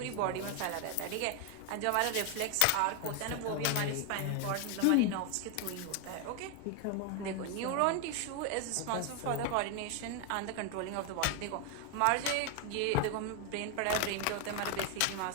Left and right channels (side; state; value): both; different; correlation 0.01